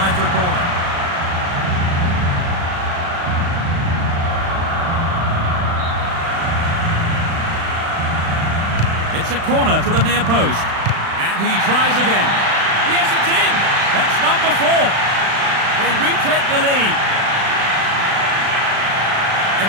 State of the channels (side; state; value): left; late; 36 ms